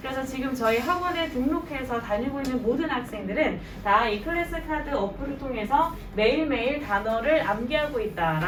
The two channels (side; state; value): both; identical; correlation 1.00